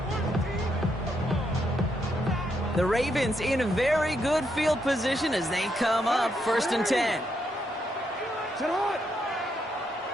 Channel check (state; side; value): normal; both; correlation 0.78